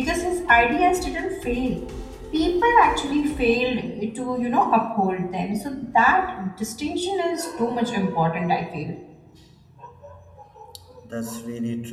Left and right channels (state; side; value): identical; both; correlation 1.00